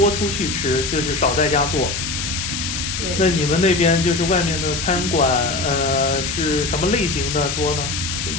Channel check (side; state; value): left; noise; hiss, 4 dB below the sound